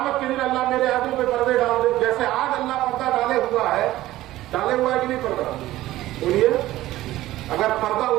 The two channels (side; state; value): left; quieter; 15.7 dB